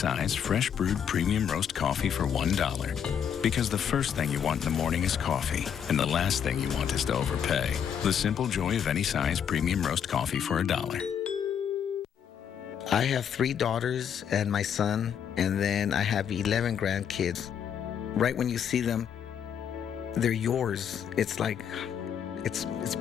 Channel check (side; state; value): right; quieter; 8.3 dB